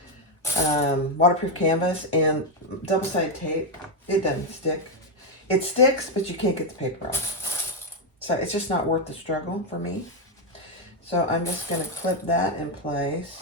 waterproof canvas, and double-sided tape, it doesn't stick. It sticks, but you can't get the paper off. So it's just not worth the struggle for me. So I'm just gonna clip that in place.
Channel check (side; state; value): both; normal; correlation 0.04